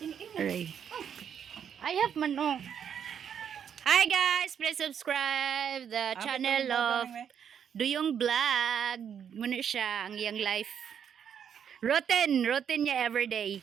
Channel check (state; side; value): quieter; left; 8.2 dB